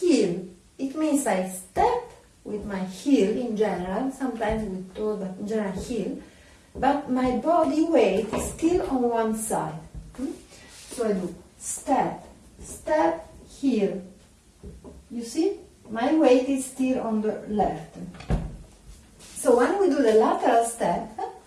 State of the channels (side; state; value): both; identical; correlation 1.00